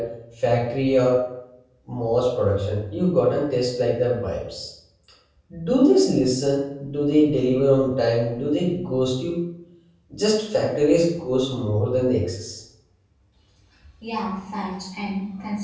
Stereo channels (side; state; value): both; identical; correlation 1.00